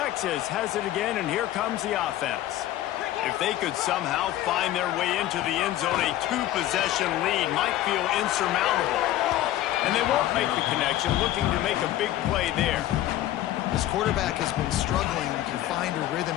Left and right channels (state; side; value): quieter; right; 13.9 dB